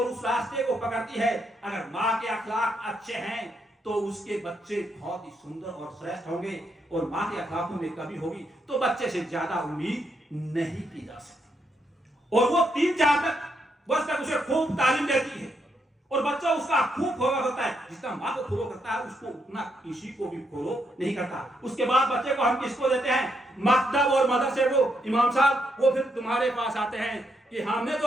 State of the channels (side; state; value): both; normal; correlation 0.78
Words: उस रास्ते को पकड़ती है। अगर माँ के अखलाक अच्छे हैं तो उसके बच्चे बहुत ही सुंदर और श्रेष्ठ होंगे, और माँ के अखलाकों में कमी होगी तो बच्चे से ज्यादा उम्मीद नहीं की जा सकती। और वो 3-4 वर्ष तक उसे खूब तालीम देती है और बच्चा उसका खूब फॉलो करता है। जितना माँ को फॉलो करता है उसको उतना किसी को भी फॉलो नहीं करता। उसके बाद बच्चे को हम किसको देते हैं? मकतब और मदरसे को। इमाम साहब वो फिर तुम्हारे पास आते हैं कि हमने